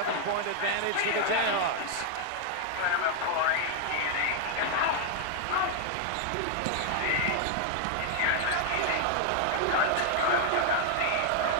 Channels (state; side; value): different; both; correlation 0.00